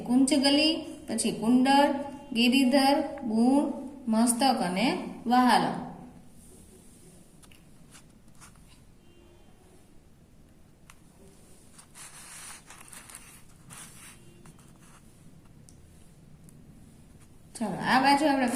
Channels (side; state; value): both; identical; correlation 1.00